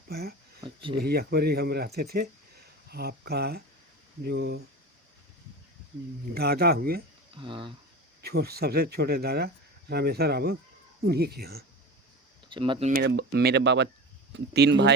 अच्छा। वही अकबरी हम रहते थे। आपका जो दादा हुए, हाँ। सबसे छोटे दादा रामेश्वर बाबू, उन्हीं के यहाँ। अच्छा, मतलब मेरे बाबा 3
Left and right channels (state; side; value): normal; both; correlation 0.30